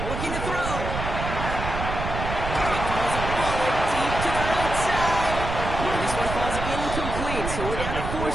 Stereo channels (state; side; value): noise; right; rumble, 5 dB below the sound